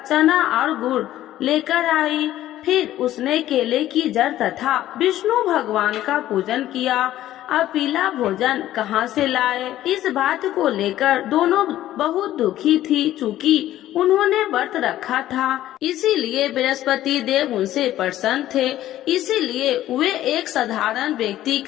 चना और गुड़ लेकर आई। फिर उसने केले की जड़ तथा विष्णु भगवान का पूजन किया। अब पीला भोजन कहाँ से लाए, इस बात को लेकर दोनों बहुत दुखी थी, चूँकि उन्होंने व्रत रखा था। इसीलिए बृहस्पति देव उनसे प्रसन्न थे। इसीलिए वे एक साधारण व्यक्ति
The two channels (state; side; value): quieter; right; 13.6 dB